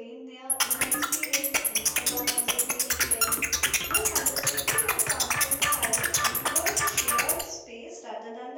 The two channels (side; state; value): both; identical; correlation 1.00